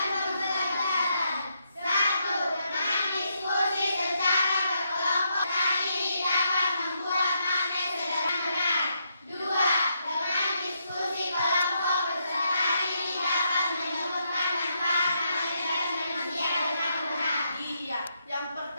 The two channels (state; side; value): inverted; both; correlation -0.79